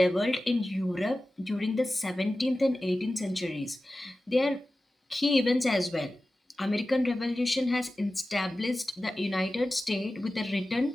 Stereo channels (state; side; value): normal; both; correlation 0.95